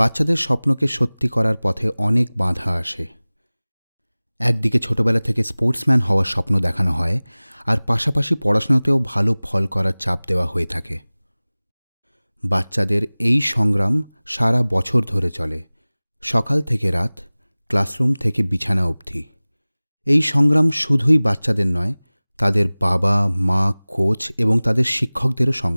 স্বপ্নকে সত্যি করার পথে অনেক বাধা আসে। একদিকে ছোটবেলা থেকে স্পোর্টসম্যান হওয়ার স্বপ্ন দেখানো হয়, আর পাশাপাশি পড়াশোনাতেও ভালো ফল করার চাপ দেওয়া হয়ে থাকে। বাচ্চাদের এই সংগ্রাম সারা বছর ধরে চলে, সকাল থেকে রাত, ক্লাসরুম থেকে বিছানা অবধি। এই সংগ্রাম শুধুই বাচ্চাদের নয়, তাদের বাবা মা, কোচ এবং তাদের শিক্ষকদেরও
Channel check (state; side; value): inverted; both; correlation -1.00